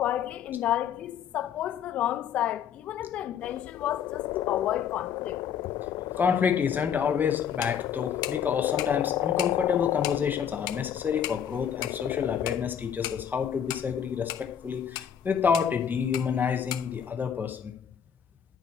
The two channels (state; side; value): quieter; right; 8.5 dB